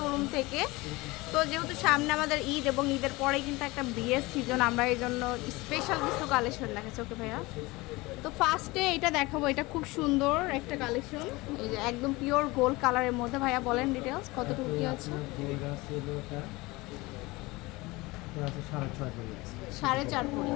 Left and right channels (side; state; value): right; quieter; 22.2 dB